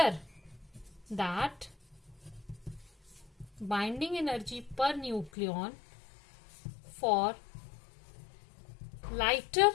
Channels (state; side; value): drops out; right; at 5.3 s